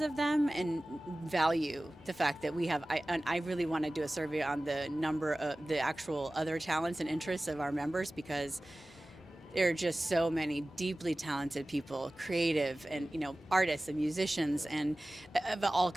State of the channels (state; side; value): normal; both; correlation 0.97